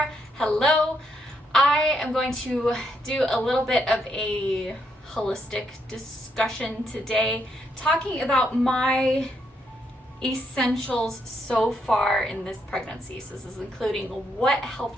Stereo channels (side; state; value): both; normal; correlation 0.78